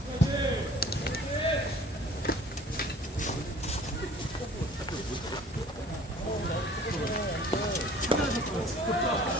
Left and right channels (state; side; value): normal; both; correlation 0.50